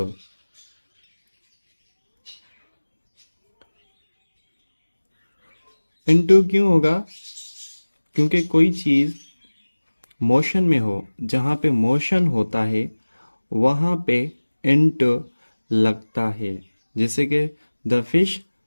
इनटू क्यों होगा? क्योंकि कोई चीज़ मोशन में हो, जहाँ पे मोशन होता है वहाँ पे इनटू लगता है। जैसे कि द फिश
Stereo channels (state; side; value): inverted; both; correlation -1.00